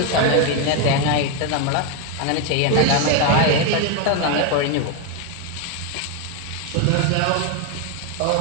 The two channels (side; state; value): both; different; correlation 0.02